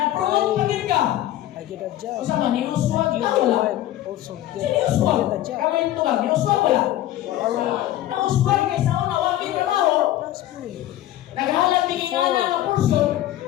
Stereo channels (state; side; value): quieter; right; 13.9 dB